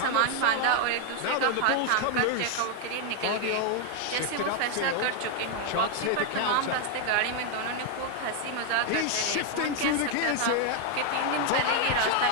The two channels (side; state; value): both; different; correlation 0.00